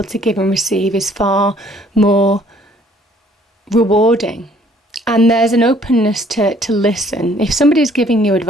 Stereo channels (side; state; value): both; normal; correlation 0.60